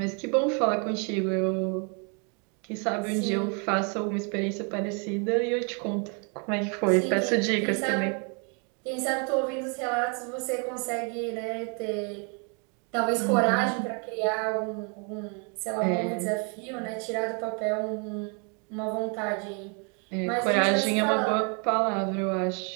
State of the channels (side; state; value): left; quieter; 36.8 dB